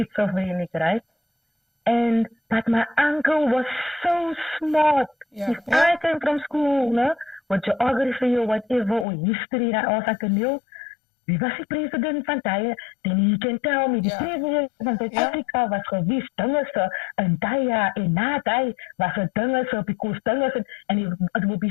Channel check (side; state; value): right; drops out; at 9.1 s